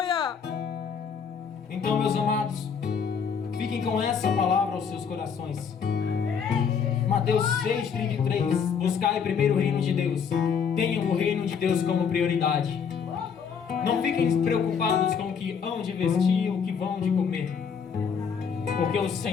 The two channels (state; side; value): quieter; right; 6.7 dB